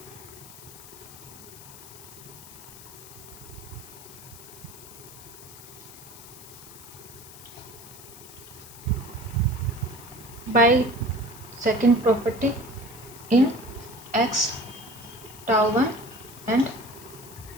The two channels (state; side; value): noise; left; hiss, 17 dB below the sound